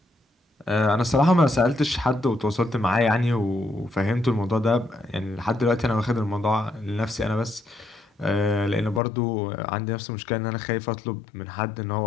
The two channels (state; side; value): drops out; right; at 9.0 s